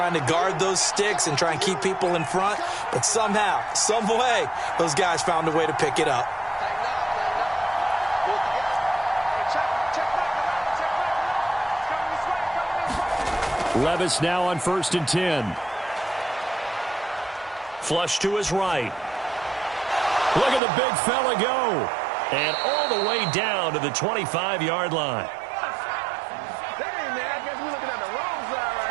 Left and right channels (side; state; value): left; drops out; at 20.6 s